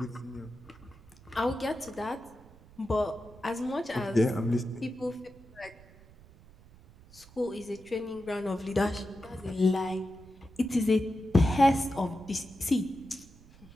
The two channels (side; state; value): right; noise; rumble, 23 dB below the sound